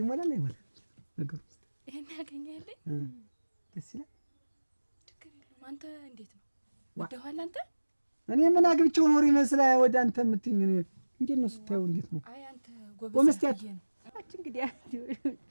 ይሞላል አይሞላ ነገር ውስጥ ይሄን ያገኘህልኝ ደስ ይላል ትክክል ነው አንተ እንዴት ነው ወደኋላ አንተ እኔ ምን አግብቼው ኖር ይመስላል ወደ አንተ የምትይኝ እንዴት ነው ስታየው እንዴት ነው አይ አንተ ጎበዝ እንግዲህ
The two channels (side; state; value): both; inverted; correlation -1.00